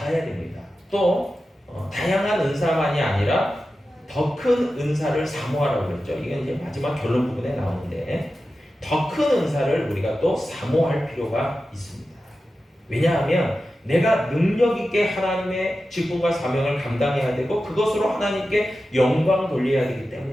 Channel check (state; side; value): normal; both; correlation 0.93